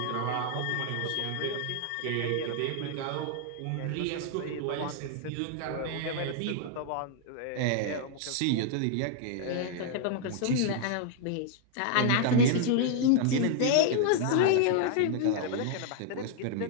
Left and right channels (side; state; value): both; different; correlation 0.00